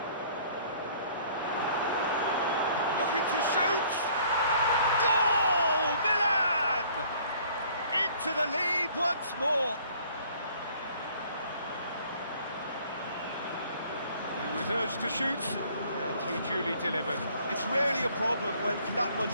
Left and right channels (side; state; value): both; inverted; correlation -0.57